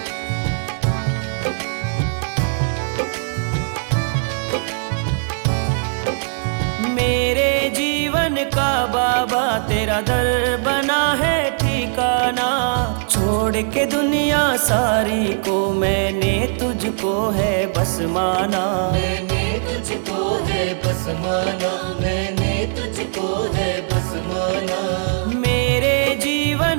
मेरे जीवन का बाबा तेरा दर बना है ठिकाना। छोड़ के दुनिया सारी को मैंने तुझको है बस माना। मैंने तुझको है बस माना। मैंने तुझको है बस माना। मेरे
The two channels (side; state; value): left; silent; 66 dB below the other